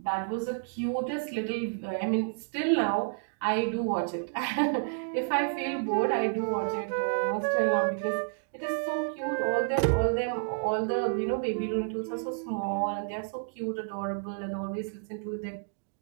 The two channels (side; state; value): left; silent; digital silence